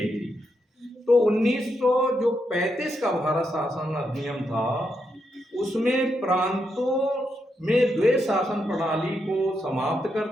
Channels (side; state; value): both; normal; correlation 0.82